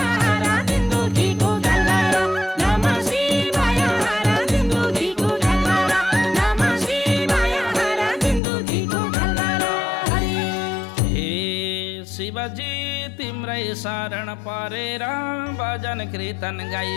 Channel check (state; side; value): drops out; right; at 8.4 s